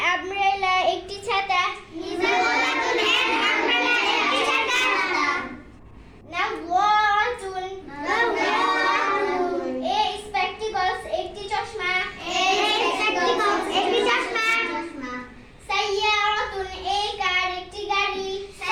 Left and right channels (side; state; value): both; identical; correlation 1.00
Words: Umbrella একটি ছাতা। নাওয়াতুন এ স্পেকটিকলস একটি চশমা। সাইয়ারাতুন এ কার একটি গাড়ি।